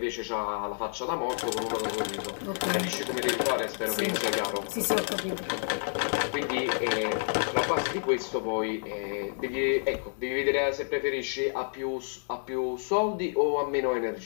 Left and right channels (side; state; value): right; silent; 58 dB below the other